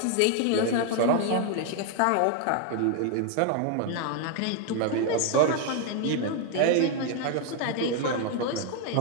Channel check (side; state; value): both; different; correlation 0.00